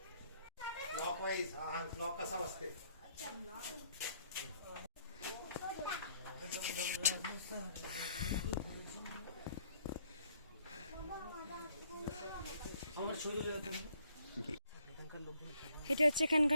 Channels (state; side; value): inverted; both; correlation -0.66